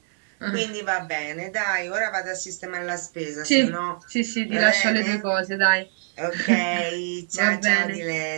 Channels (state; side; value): silent; left; 63 dB below the other